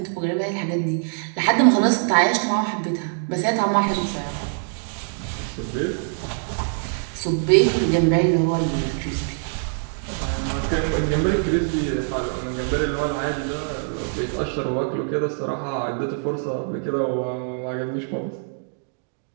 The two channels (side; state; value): left; silent; 59 dB below the other